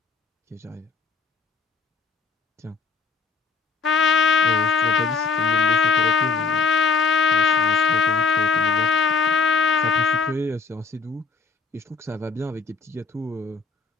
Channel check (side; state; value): right; quieter; 4.7 dB